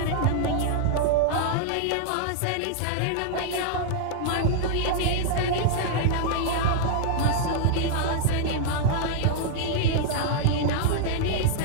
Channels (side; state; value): both; different; correlation -0.01